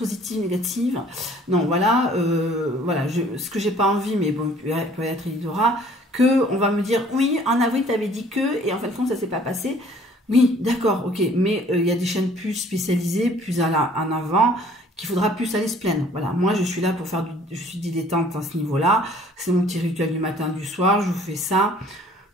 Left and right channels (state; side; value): normal; both; correlation 0.55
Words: négatives. Non, voilà, voilà ce que j'ai pas envie, mais bon, peut-être il y aura, que on va me dire, oui, en avril, tu avais dit que, et en fin de compte, ça s'est pas passé. Oui, d'accord, ok, mais il y a des chaînes plus spécialisées, plus en avant, qu'il faudra plus aller se plaindre. Voilà, moi je suis là pour faire je suis dilettante à ce niveau-là. C'est mon petit rituel du matin, du soir, je vous fais ça.